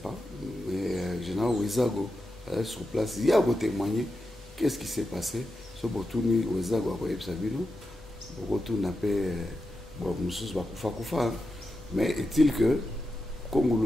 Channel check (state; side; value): normal; both; correlation 0.89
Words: mais général Wezago est sur place. Il y a ko témoigner qu'est-ce qui s'est passé. Ce botuni Wezago a koyeb sabino. Beaucoup n'a pas mais est-il que